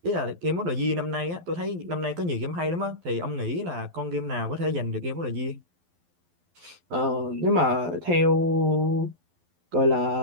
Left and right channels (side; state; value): left; late; 12 ms